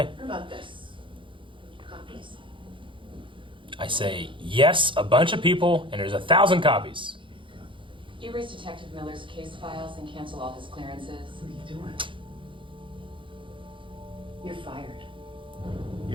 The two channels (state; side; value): late; left; 0.24 ms